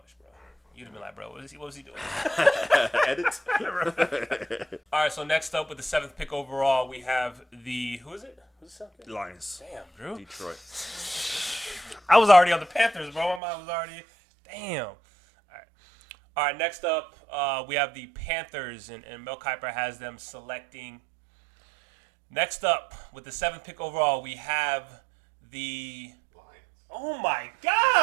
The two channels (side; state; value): left; drops out; at 13.4 s